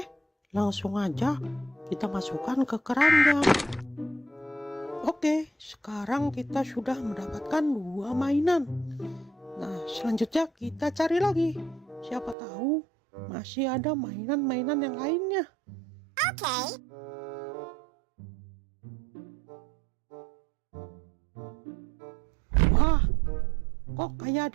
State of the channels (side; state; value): left; drops out; at 12.4 s